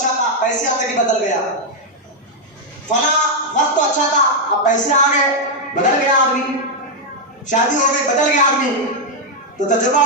تھا، پیسے آتے کہ بدل گیا. فلاں وقت تو اچھا تھا، اب پیسے آ گئے بدل گیا آدمی. شادی ہو گئی بدل گیا آدمی. تو تجربہ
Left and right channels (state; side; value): normal; both; correlation -0.01